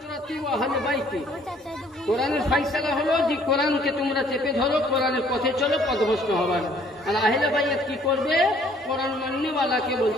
ওয়া আহলি বাইতি। কোরআনের ফয়সালা হলো যে কোরআনকে তোমরা চেপে ধরো, কোরআনের পথে চলো, পথভ্রষ্ট হবে না। আর আহলে বাইত কি করবে? কোরআন মাননেওয়ালাকে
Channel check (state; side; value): normal; both; correlation 0.60